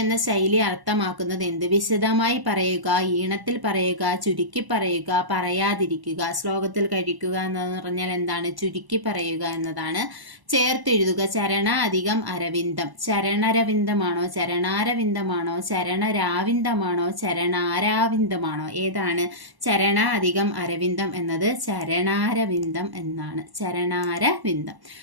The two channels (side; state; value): left; late; 1.0 ms